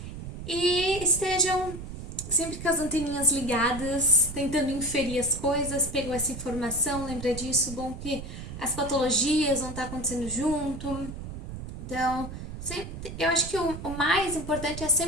E estejam sempre com as anteninhas ligadas, tentando inferir as coisas, pegou essa informação, lembra disso, bom que as patologias vão estar acontecendo junto. Então, eu acho que o mais importante é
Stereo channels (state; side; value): noise; right; rumble, 9 dB below the sound